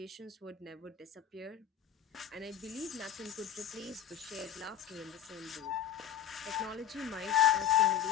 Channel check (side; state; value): right; quieter; 9.1 dB